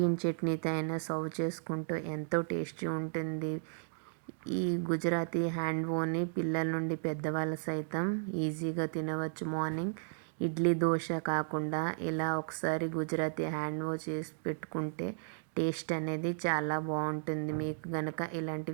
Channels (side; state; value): left; silent; digital silence